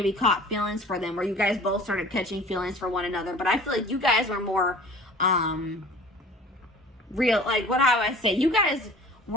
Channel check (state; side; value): normal; both; correlation 0.45